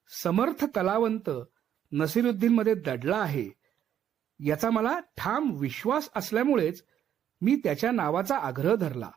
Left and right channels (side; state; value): left; quieter; 10.0 dB